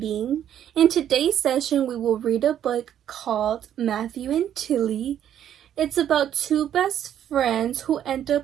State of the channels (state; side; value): quieter; left; 10.3 dB